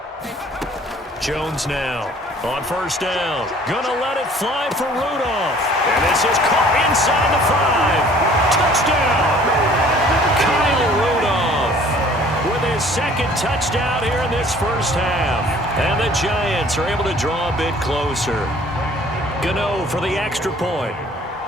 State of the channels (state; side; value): normal; both; correlation 0.53